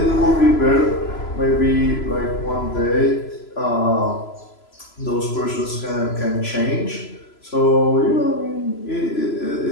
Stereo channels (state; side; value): late; right; 3.0 ms